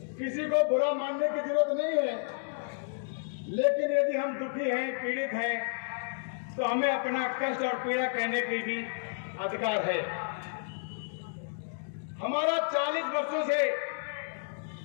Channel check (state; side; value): silent; right; digital silence